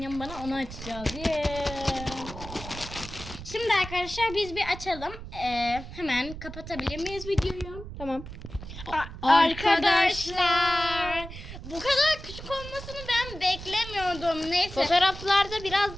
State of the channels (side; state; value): right; noise; rumble, 12 dB below the sound